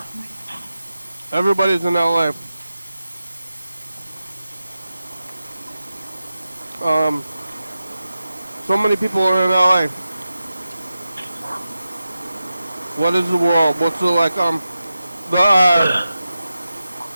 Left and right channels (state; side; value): inverted; both; correlation -0.92